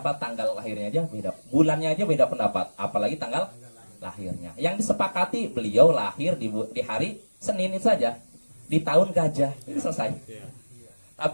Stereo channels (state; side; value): inverted; both; correlation -1.00